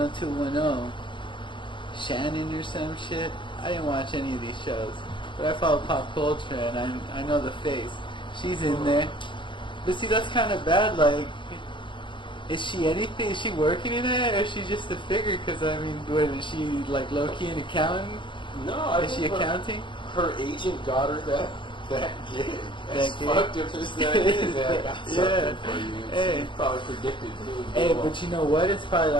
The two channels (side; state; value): right; late; 0.24 ms